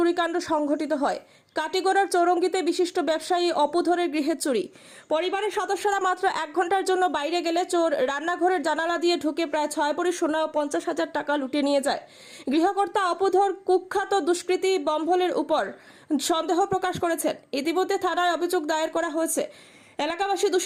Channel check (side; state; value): both; identical; correlation 1.00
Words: সংঘটিত হয়। কাটিগড়ার চৌরঙ্গিতে বিশিষ্ট ব্যবসায়ী অপুধরের গৃহে চুরি। পরিবারের সদস্যরা মাত্র 1 ঘন্টার জন্য বাইরে গেলে চোর রান্নাঘরের জানালা দিয়ে ঢুকে প্রায় 6 ভরি সোনা ও 50,000 টাকা লুটে নিয়ে যায়। গৃহকর্তা অপুধর কুখ্যাত দুষ্কৃতী বম্ভলের উপর সন্দেহ প্রকাশ করেছেন। ইতিমধ্যে থানায় অভিযোগ দায়ের করা হয়েছে। এলাকাবাসী